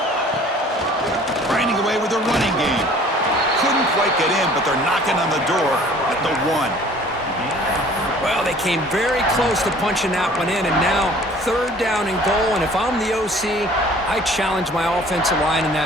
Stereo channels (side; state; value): both; normal; correlation 0.51